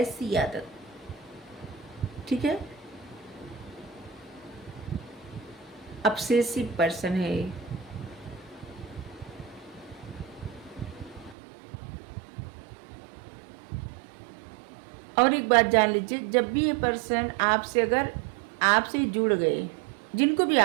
आदत, ठीक है। ऑब्सेसिव पर्सन है। और एक बात जान लीजिए, जब भी ये पर्सन आपसे अगर आपसे जुड़ गए, जिनको भी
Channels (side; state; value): left; drops out; at 11.4 s